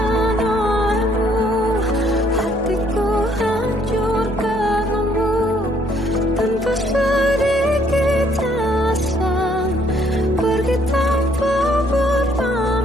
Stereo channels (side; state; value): both; normal; correlation 0.65